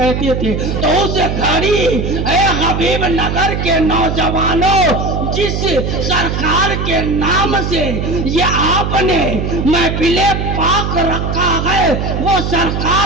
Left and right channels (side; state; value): right; noise; hum, 2 dB below the sound